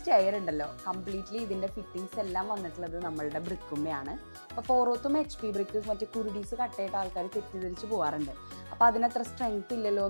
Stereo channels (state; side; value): inverted; both; correlation -1.00